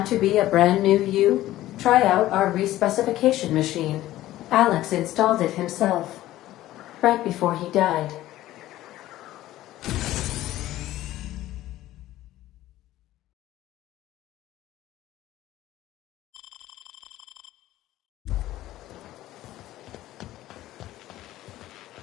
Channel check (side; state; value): right; quieter; 15.0 dB